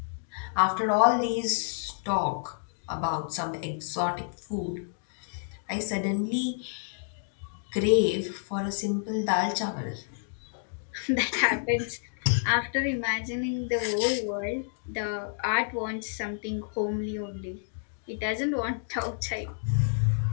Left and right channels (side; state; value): right; silent; digital silence